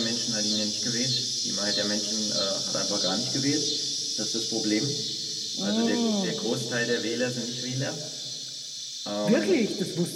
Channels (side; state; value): both; identical; correlation 1.00